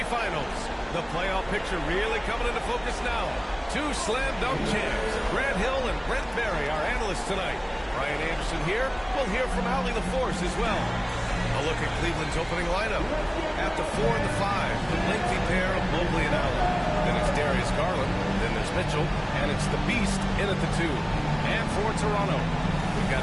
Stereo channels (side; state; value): both; identical; correlation 1.00